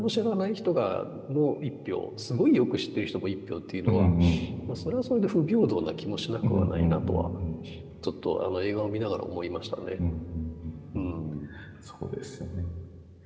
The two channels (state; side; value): identical; both; correlation 1.00